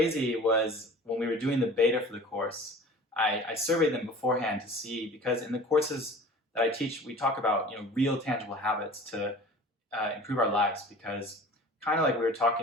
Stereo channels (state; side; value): normal; both; correlation 0.43